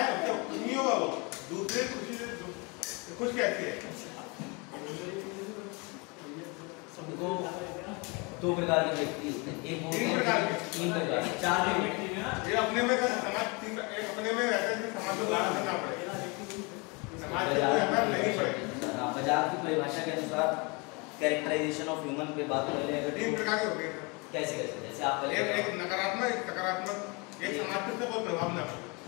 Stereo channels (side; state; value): right; quieter; 29.4 dB